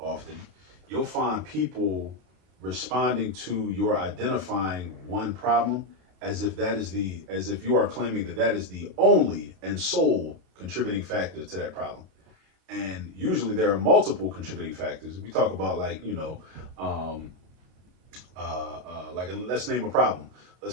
you'll find people responding to your identifying one problem as if you are claiming that that is the only and sole contributing factor to that problem. And usually there are multiple contributing factors. If we talk about let's name a problem.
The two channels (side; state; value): left; late; 32 ms